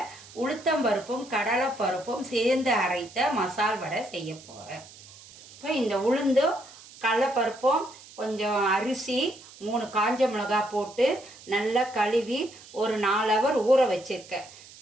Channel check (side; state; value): right; noise; hiss, 20 dB below the sound